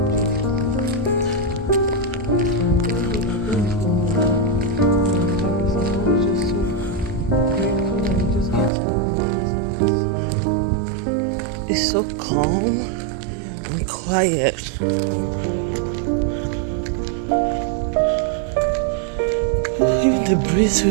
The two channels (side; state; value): left; drops out; at 8.7 s